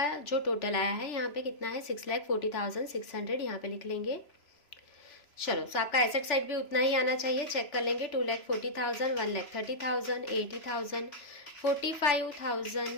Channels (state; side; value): late; right; 3.0 ms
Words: जो टोटल आया है यहाँ पे कितना है? 6,40,600। यहाँ पे लिख लेंगे। चलो आपका एसेट साइड भी उतना ही आना चाहिए। चेक कर लेंगे 2,40,000, 1,30,000, 80,000,